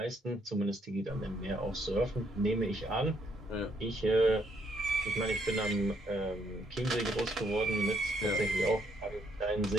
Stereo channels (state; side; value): normal; both; correlation 0.72